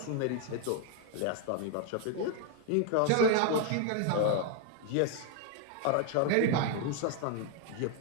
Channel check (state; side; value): different; both; correlation 0.01